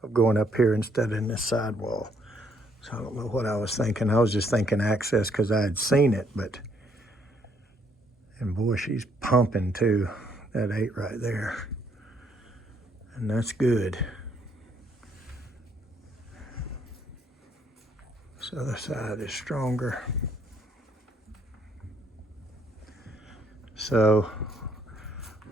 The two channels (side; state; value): both; normal; correlation 0.70